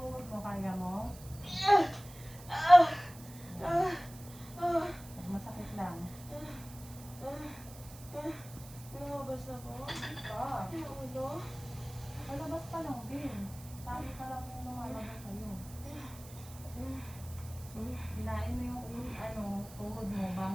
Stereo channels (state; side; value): noise; right; hiss, 18 dB below the sound